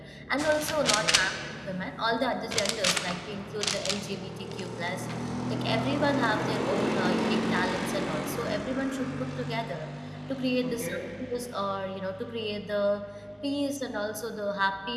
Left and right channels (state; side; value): identical; both; correlation 1.00